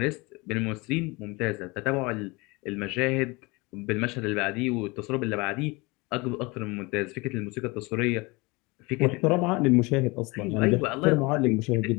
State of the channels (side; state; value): right; quieter; 25.3 dB